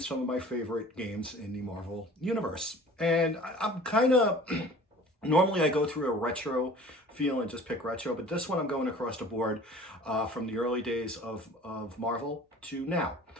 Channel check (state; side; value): normal; both; correlation 0.46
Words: of my favorite games in the Marvel Universe. And I'm kind of normally I go through a retro feel and just pick retro, but this one I'm going across the board from the early days of Marvel to now.